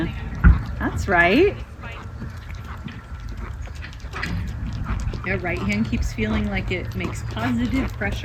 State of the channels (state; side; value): identical; both; correlation 1.00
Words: That's right. Your right hand keeps feeling like it makes positive